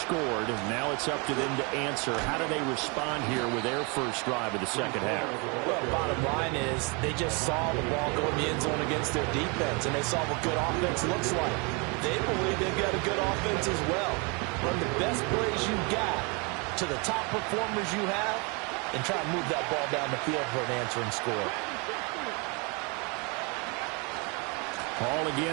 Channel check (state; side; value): quieter; left; 31.4 dB